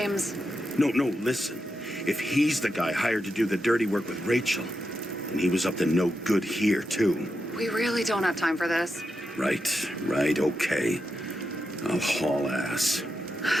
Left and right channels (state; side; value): normal; both; correlation 0.86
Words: No, listen. If he's the guy hired to do the dirty work with Rachel, and he was up to no good here, too. we really don't have time for this. Right, okay. I'll haul ass.